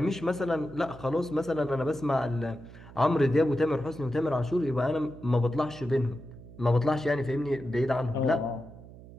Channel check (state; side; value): noise; right; hum, 18 dB below the sound